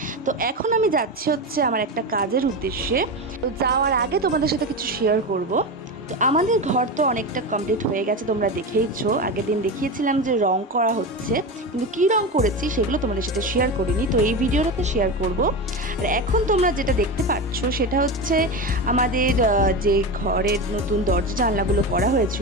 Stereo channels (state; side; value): normal; both; correlation 0.21